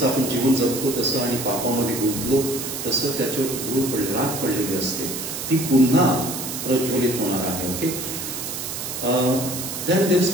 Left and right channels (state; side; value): noise; right; hiss, 6 dB below the sound